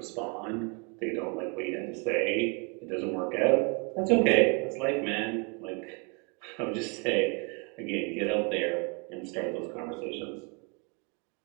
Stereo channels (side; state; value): left; quieter; 33.5 dB